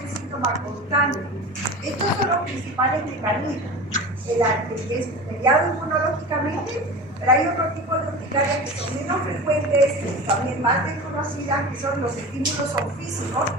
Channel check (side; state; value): both; normal; correlation 0.32